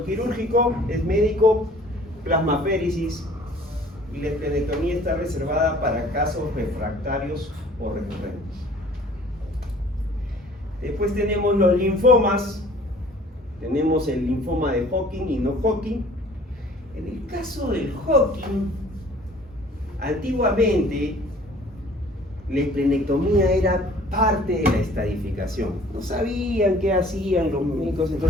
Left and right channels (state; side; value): normal; both; correlation 0.52